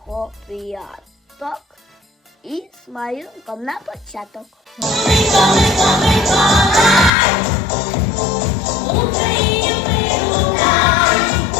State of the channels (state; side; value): drops out; right; at 7.1 s